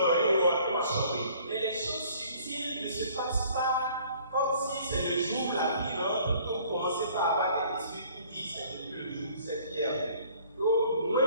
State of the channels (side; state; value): both; inverted; correlation -0.55